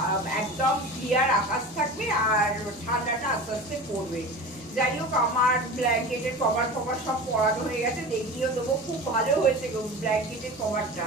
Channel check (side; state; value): both; normal; correlation 0.33